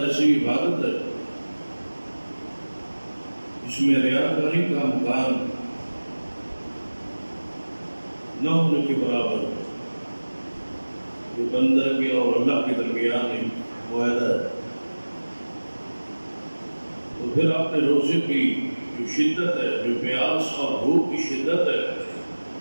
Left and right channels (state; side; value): inverted; both; correlation -1.00